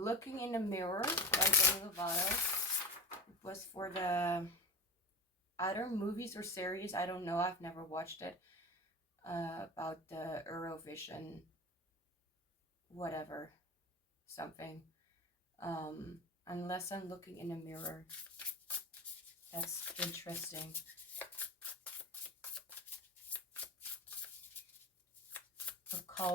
in the Mirror by Demi Lovato. It was for the either movies or series, I don't know, I've never watched it, about the Eurovision whatever something. Unless I'm looking in a mirror. That's interesting. A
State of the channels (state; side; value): normal; both; correlation 0.26